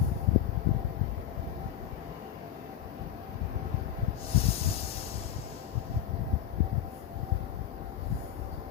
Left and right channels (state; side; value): quieter; right; 10.8 dB